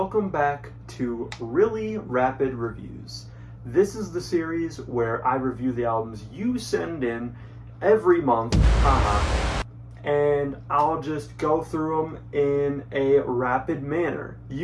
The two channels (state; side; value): identical; both; correlation 1.00